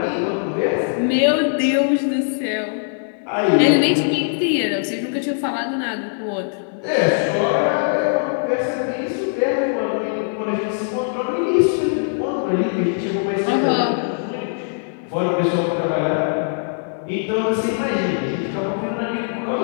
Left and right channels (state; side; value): silent; right; digital silence